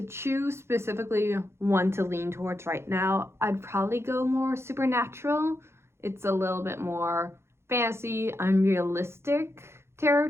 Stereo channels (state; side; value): late; left; 0.12 ms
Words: choose specifically one to lean towards right now, I'd probably go more supernatural. It's a little bit more fantasy, unrealistic